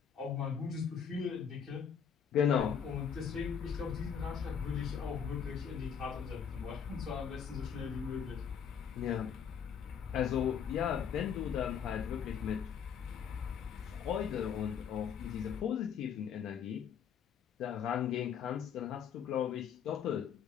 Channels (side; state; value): right; quieter; 7.6 dB